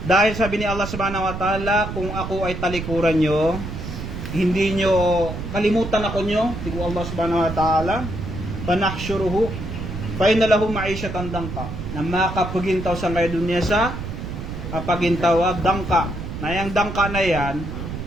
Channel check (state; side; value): noise; right; rumble, 7 dB below the sound